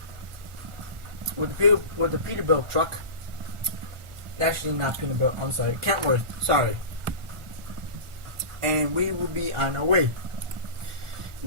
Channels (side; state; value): left; late; 1.4 ms